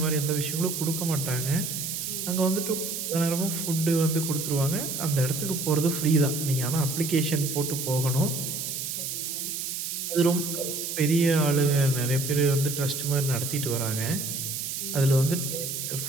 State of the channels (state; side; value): noise; right; hiss, 4 dB below the sound